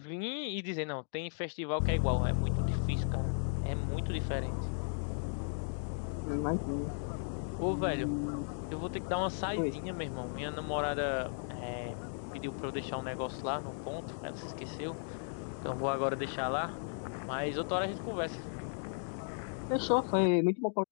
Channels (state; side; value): silent; right; digital silence